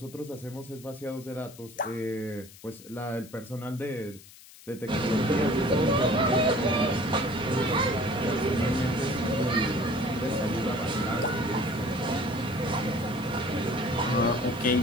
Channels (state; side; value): noise; left; hiss, 20 dB below the sound